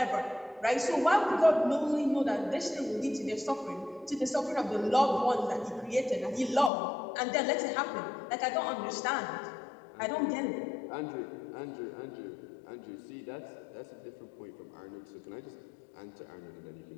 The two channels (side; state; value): right; drops out; at 6.7 s